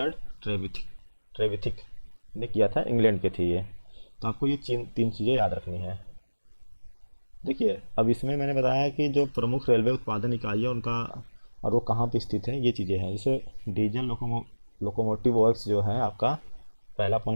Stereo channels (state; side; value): inverted; both; correlation -1.00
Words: ट्रेविथिक ने किया था, इंग्लैंड के थे ये। तो आपको ये तीन चीज़ें याद रखनी है। देखिए अब इसमें मैंने बताया कि जो प्रमुख रेलवे उत्पादन इकाई है उनका और वो कहाँ पे स्थित है, ये चीज़ें हैं। जैसे डीजल लोकोमोटिव वर्क्स जो है आपका, पहला